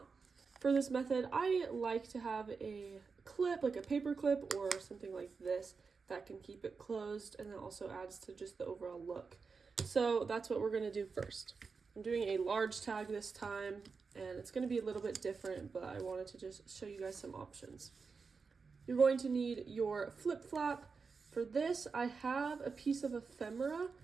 For this method, I like to have a clip, like a paper clip or something like this, that can keep it closed, and then also adds to just the overall look. So that's what we're going to do first. I'm doing a large tag this time, and it's going to be a little bit different, but I wanted to just show you guys some options. You're going to need your flip flap. For this, I have a piece of ephemera.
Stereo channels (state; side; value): quieter; left; 5.0 dB